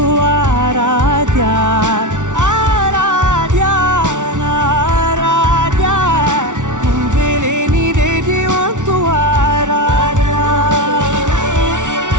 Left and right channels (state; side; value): late; left; 0.86 ms